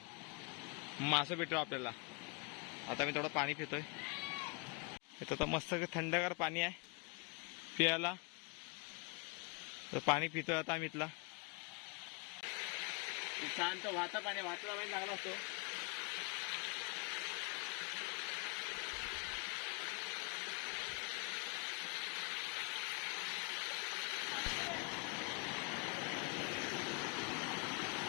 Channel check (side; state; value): right; quieter; 32.3 dB